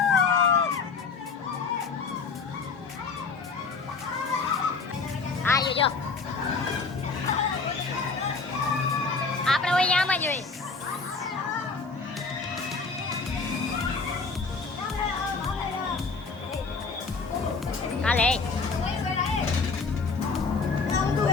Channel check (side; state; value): right; quieter; 4.6 dB